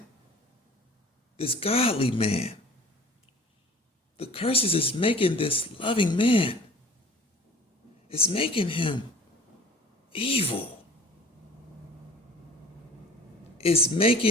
this godly man. The curses is making this loving man, it's making him evil. It's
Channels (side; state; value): both; normal; correlation 0.46